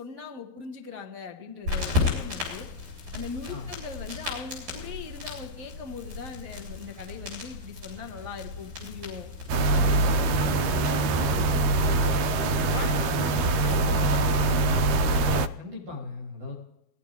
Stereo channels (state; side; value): late; left; 13 ms